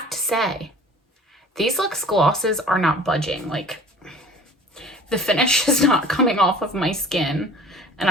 to say, these Luxe glosses are not budging. Like, the finish is not coming off of my skin. And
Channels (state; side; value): normal; both; correlation 0.46